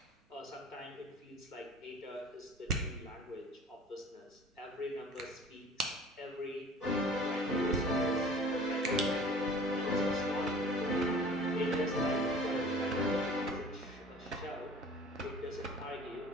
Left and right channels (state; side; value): normal; both; correlation 0.46